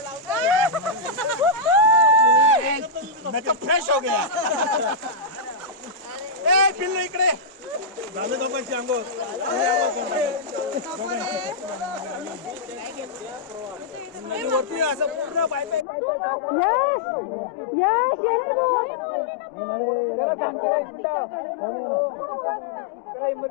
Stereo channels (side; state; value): right; drops out; at 15.9 s